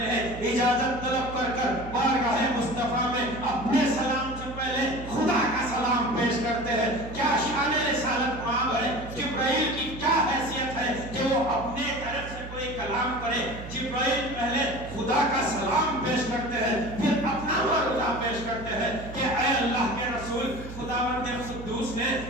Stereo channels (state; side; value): noise; right; hum, 12 dB below the sound